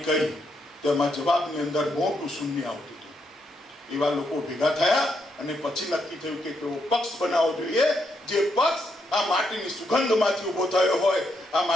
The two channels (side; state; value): both; normal; correlation 0.78